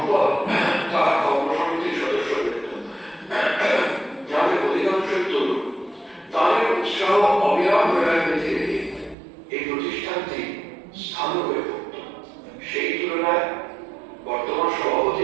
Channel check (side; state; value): left; drops out; at 9.2 s